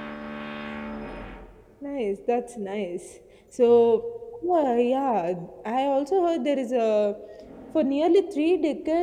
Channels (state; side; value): identical; both; correlation 1.00